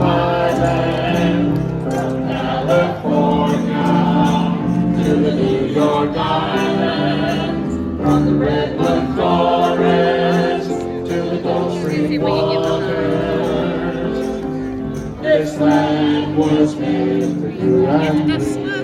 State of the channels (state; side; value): identical; both; correlation 1.00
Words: land. From California to the New York Island, from the redwood forest to the Gulf Stream waters, this land was made for you and me.